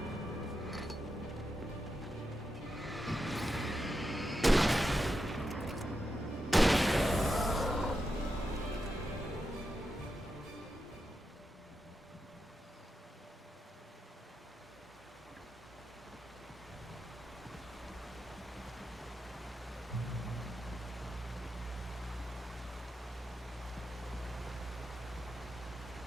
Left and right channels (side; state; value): both; normal; correlation 0.87